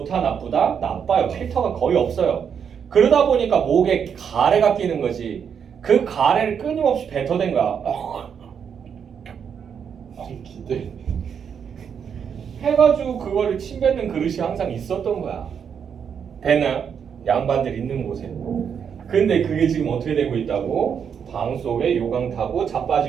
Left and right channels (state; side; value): quieter; left; 7.4 dB